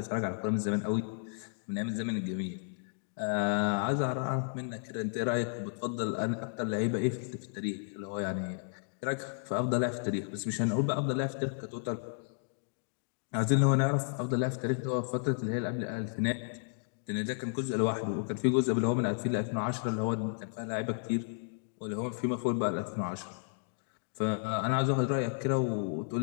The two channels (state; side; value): silent; right; digital silence